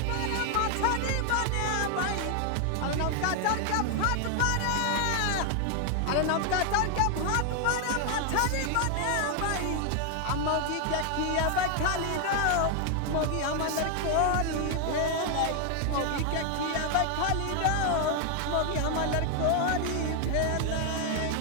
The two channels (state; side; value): different; both; correlation 0.00